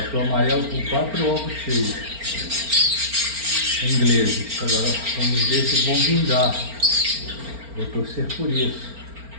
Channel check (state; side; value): late; left; 4.4 ms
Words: amarelo com 4 ovos cheios. Ingleses. Agora vamos ver se vão vingar. Vou torcer por isso.